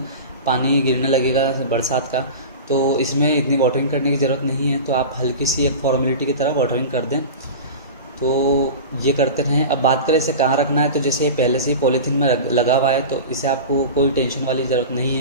पानी गिरने लगेगा बरसात का, तो इसमें इतनी वाटरिंग करने की ज़रूरत नहीं है। तो आप हल्की सी एक फॉर्मेलिटी की तरह वाटरिंग कर दें। तो ये करते रहें। अब बात करें इसे कहाँ रखना है, तो जैसे ये पहले से ही पॉलीथीन में लगा हुआ है तो इसे आपको कोई टेंशन वाली ज़रूरत नहीं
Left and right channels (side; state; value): both; inverted; correlation -0.30